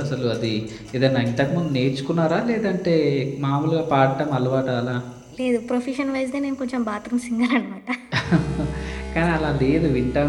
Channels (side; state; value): both; identical; correlation 1.00